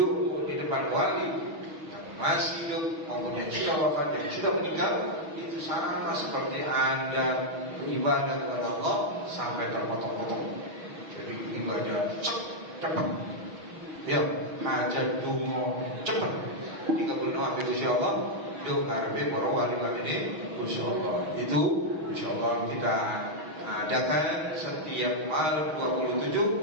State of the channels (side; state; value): left; late; 6.2 ms